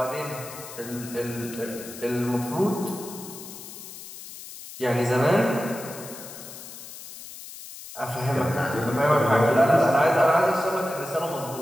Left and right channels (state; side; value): noise; left; hiss, 14 dB below the sound